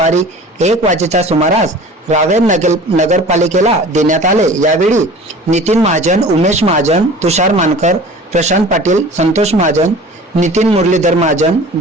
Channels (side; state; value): both; normal; correlation 0.42